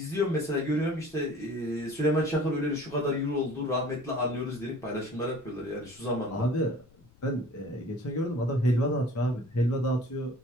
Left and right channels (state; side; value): noise; left; rumble, 27 dB below the sound